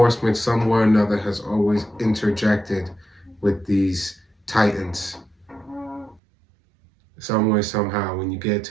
somewhere or another, has always interjected with these titans. Some way, somehow, when you get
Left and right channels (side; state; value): left; drops out; at 6.2 s